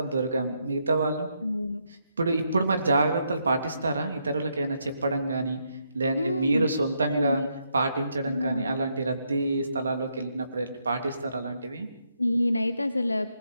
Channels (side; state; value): both; inverted; correlation -0.78